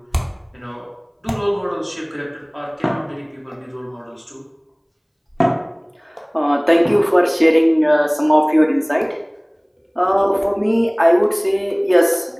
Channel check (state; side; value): identical; both; correlation 1.00